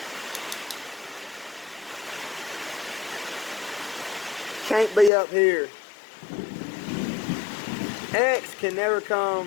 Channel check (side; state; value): right; drops out; at 5.1 s